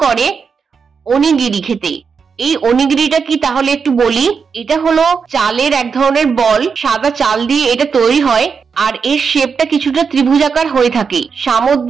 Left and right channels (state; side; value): quieter; left; 5.8 dB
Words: করে ওনিগিরি খেতে। এই ওনিগিরিটা কি তাহলে একটু বলি। এটা হলো চালের এক ধরনের বল, সাদা চাল দিয়ে এটা তৈরি হয়, আর এর শেপটা কিছুটা ত্রিভুজাকার হয়ে থাকে।